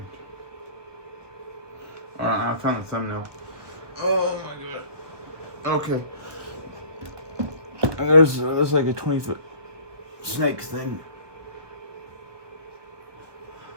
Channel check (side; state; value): left; late; 1.3 ms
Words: Alright, I found the thumbnail. Oh my god. Okay. And there's like a 20-foot snake thing.